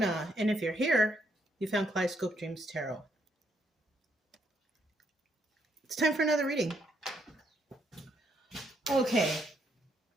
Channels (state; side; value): normal; both; correlation 0.74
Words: and if you're here, you found Kaleidoscope Dreams Tarot. It's time for another reading. Okay,